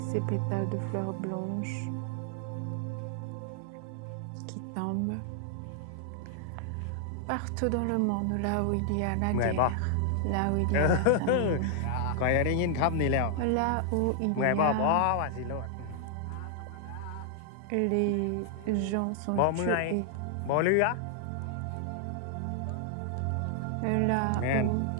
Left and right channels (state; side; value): different; both; correlation 0.00